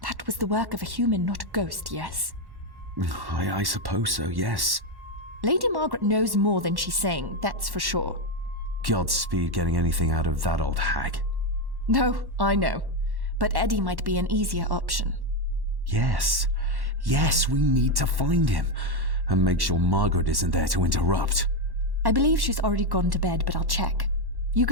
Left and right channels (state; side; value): late; left; 1.1 ms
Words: That was the work of a human, not a ghost, yes? I suppose so, yes. Lady Margaret knows more than she's saying, that's for sure. Godspeed getting anything out of that old hag. No, I know. But Eddie might be an easier option. Yes. Yes, we need to find him. And make sure Margaret isn't there to interrupt. I believe she's already gone to bed, but I'll check. You